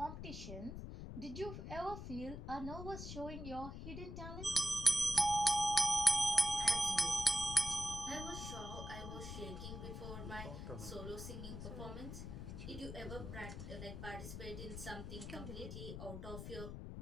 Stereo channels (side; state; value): left; noise; rumble, 8 dB below the sound